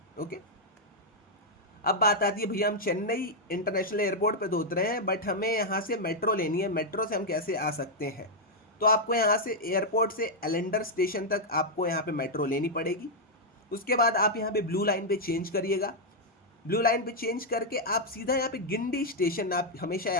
ओके, अब बात आती है, भैया हम चेन्नई इंटरनेशनल एयरपोर्ट पे तो उतरे हैं, बट हमें यहाँ से मेट्रो लेनी है, मेट्रो से हम कैसे आ सकते हैं? तो आपको यहाँ से एयरपोर्ट से एलेंडर स्टेशन तक आपको यहाँ पे मेट्रो लेनी पड़ेगी। उसके बाद आप यहाँ पे ब्लू लाइन पे चेंज करिएगा। ब्लू लाइन पे चेंज करके आप सीधा यहाँ पे गिंडी स्टेशन, आप हमेशा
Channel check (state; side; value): normal; both; correlation -0.03